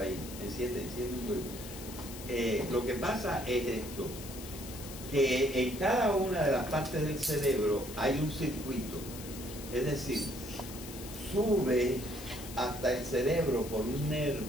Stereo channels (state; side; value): noise; left; hiss, 13 dB below the sound